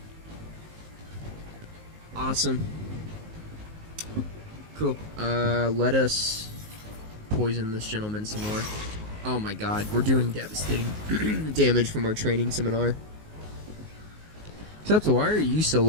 Awesome. Cool. Let us poison this gentleman some more. Oh my god, we're doing devastating damage from our training seminar. Except, why are you so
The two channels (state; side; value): late; left; 19 ms